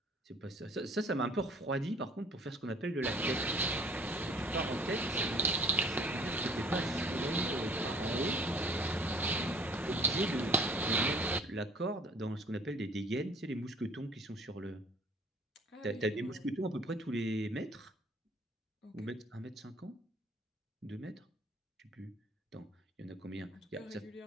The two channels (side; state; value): both; normal; correlation 0.53